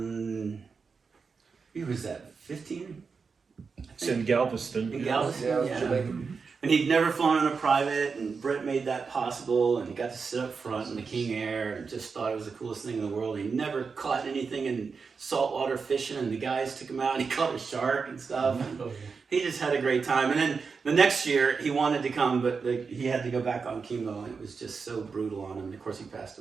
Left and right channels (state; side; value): quieter; left; 5.2 dB